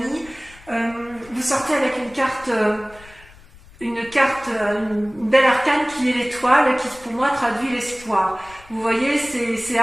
vous sortez avec une belle arcane qui est l'étoile, qui pour moi traduit l'espoir. Vous voyez, c'est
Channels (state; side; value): noise; left; rumble, 23 dB below the sound